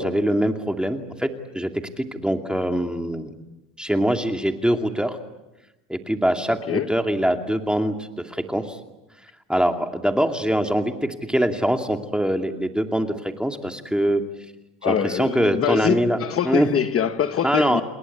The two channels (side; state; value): both; normal; correlation 0.80